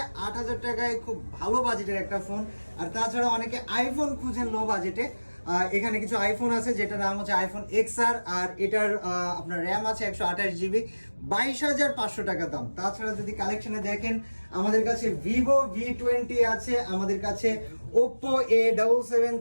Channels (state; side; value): inverted; both; correlation -1.00